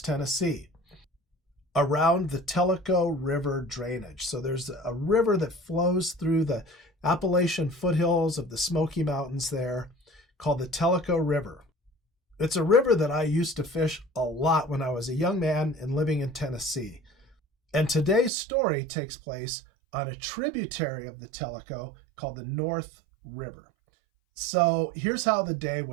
Tennessee, around the Tellico River drainage. So there's a river that flows through the Appalachian foothills of the Smoky Mountains there, called the Tellico River. It's a river that I used to fish a lot when I was a young man and living in Tennessee. And today's story takes place on a tributary of the Tellico called the North River. So here's how the day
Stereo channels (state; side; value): drops out; left; at 18.3 s